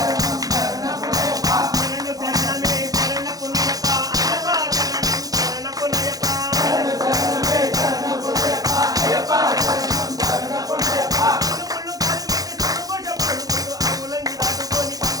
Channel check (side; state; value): left; late; 0.18 ms